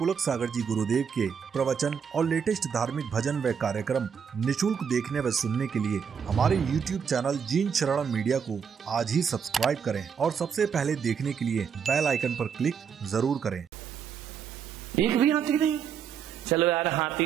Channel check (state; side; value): quieter; left; 7.1 dB